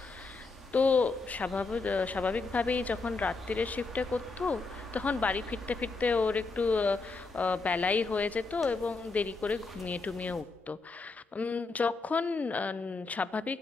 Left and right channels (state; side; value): quieter; right; 3.9 dB